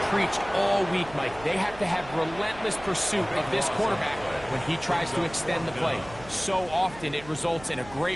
preached all week, Mike. They have to have relentless pursuit of this quarterback when he tries to extend the play. So often it results in a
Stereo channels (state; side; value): noise; right; hum, 18 dB below the sound